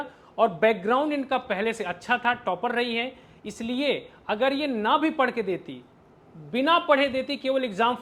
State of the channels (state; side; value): identical; both; correlation 1.00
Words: और बैकग्राउंड इनका पहले से अच्छा था, टॉपर रही है। इसलिए अगर ये ना भी पढ़ के देती, बिना पढ़े देती, केवल एग्जाम